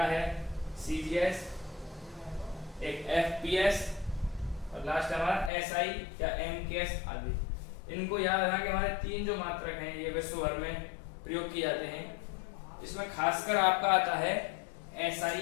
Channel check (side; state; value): right; drops out; at 5.5 s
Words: है CGS, एक FPS, और लास्ट हमारा SI या MKS आदि। इनको याद रखना कि हमारे तीन जो मात्रक हैं ये विश्व भर में प्रयोग किए जाते हैं। इसमें खासकर आपका आता है SI